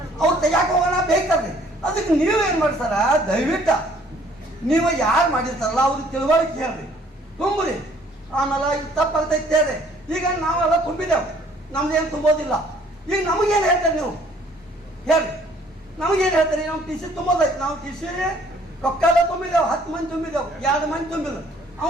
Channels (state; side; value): normal; both; correlation 0.59